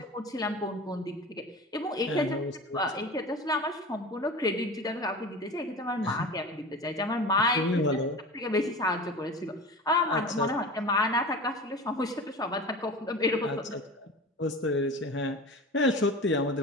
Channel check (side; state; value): both; normal; correlation 0.33